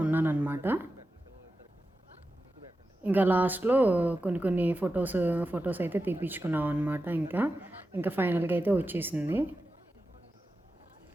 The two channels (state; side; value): normal; both; correlation 0.92